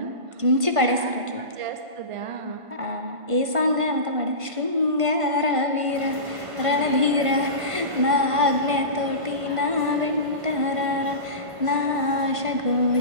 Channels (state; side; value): late; left; 1.5 ms